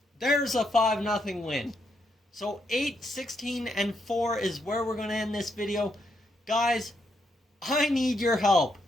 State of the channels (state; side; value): normal; both; correlation 0.78